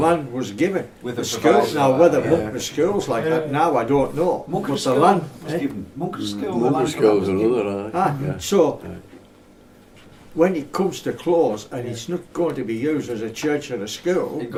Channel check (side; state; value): both; identical; correlation 1.00